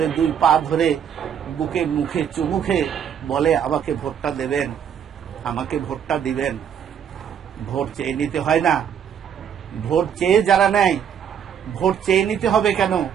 2 পা ধরে বুকে মুখে চুমুখে বলে আমাকে ভোটটা দেবেন, আমাকে ভোটটা দিবেন। ভোট চেয়ে নিতে হয় না। ভোট চেয়ে যারা নেয়, ভোট চেয়ে নিতে হবে কেন?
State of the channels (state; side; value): quieter; left; 8.3 dB